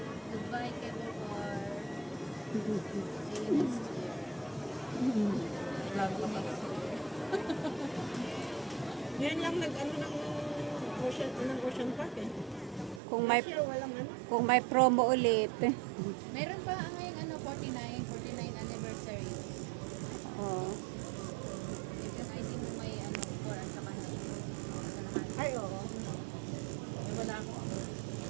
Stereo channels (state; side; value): drops out; left; at 13.0 s